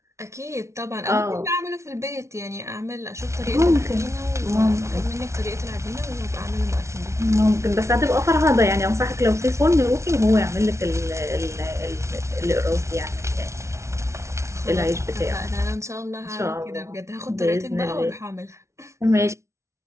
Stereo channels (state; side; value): late; left; 0.13 ms